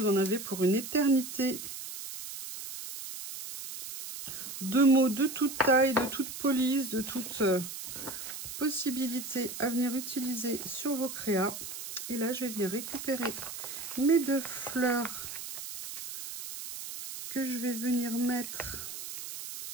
en avez pour une éternité. De mots de toute taille, de toute police, de toute possibilité à venir utiliser sur vos créas. Et là, je vais venir récupérer mes deux fleurs que je vais venir mettre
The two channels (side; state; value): right; noise; hiss, 9 dB below the sound